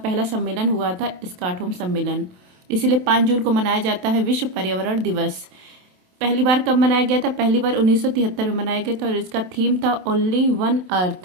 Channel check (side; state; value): left; late; 27 ms